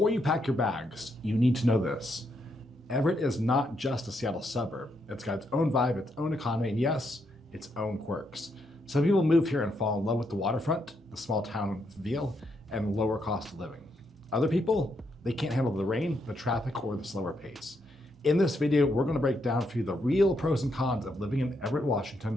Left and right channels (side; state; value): both; normal; correlation 0.78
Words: you pack your bags, you need to know this. Everett is not just a Seattle suburb. It's got its own vibe, its own economy, and yes, its own quirks. Some people move here and fall in love with the waterfront, the small town feel, and lower cost of living. Other people, they can't handle the rain, the traffic, or the slower pace. In this video, we're gonna break down for you the real pros and cons of living in Everett,